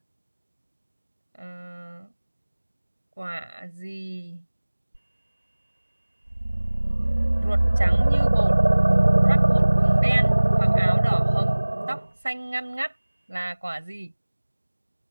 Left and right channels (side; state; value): both; inverted; correlation -1.00